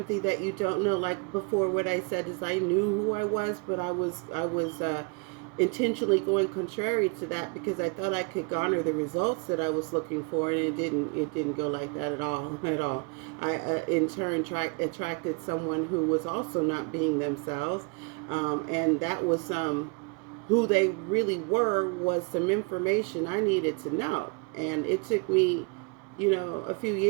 that you don't know. Like before, what I said is I knew who I was, but I was intentionally going contrary to that because I thought I could garner the results that I was looking for, and it didn't go like that at all. I in turn attracted someone who was also not being themselves, and that was who they really were was some information I needed to know, and it took me a few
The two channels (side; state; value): left; quieter; 33.5 dB